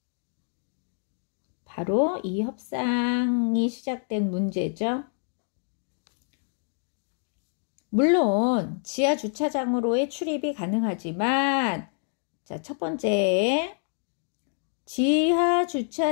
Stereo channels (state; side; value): silent; right; 60 dB below the other